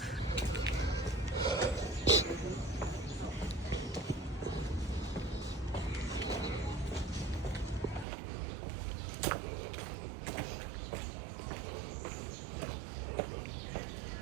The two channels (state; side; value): drops out; left; at 8.1 s